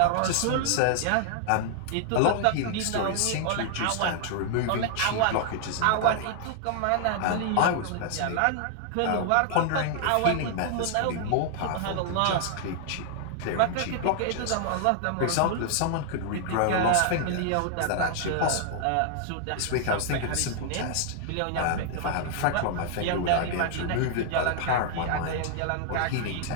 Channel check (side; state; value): both; different; correlation 0.00